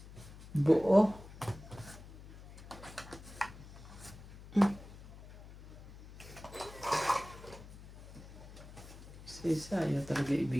Buo. Si isa ayaw talaga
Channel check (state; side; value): noise; left; hum, 16 dB below the sound